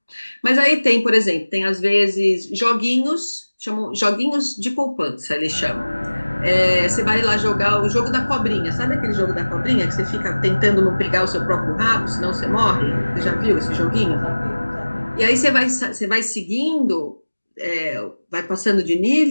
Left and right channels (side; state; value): both; inverted; correlation -1.00